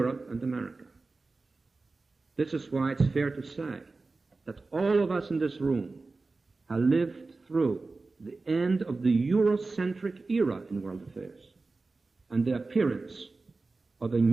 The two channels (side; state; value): left; quieter; 3.7 dB